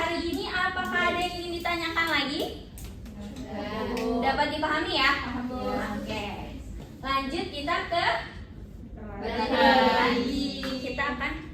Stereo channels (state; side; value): identical; both; correlation 1.00